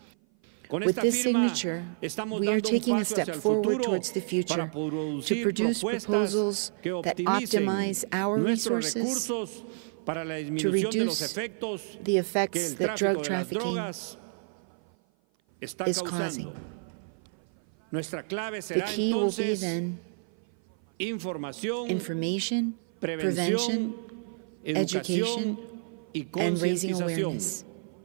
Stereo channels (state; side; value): silent; left; 55 dB below the other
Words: With this signature, we are taking a step forward towards the future to produce proposals that optimize our resources to reduce the effects that drug trafficking is causing. The key will be then information, prevention, education, and raising awareness.